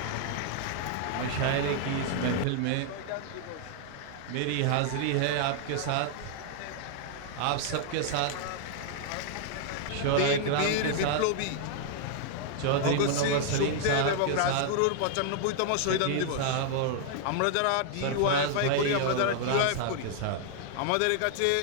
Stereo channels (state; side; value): different; both; correlation -0.01